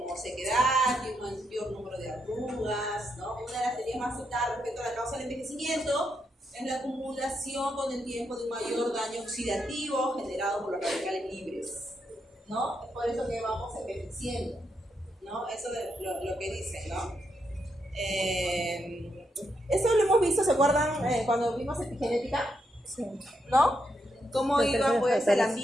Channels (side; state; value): both; normal; correlation 0.81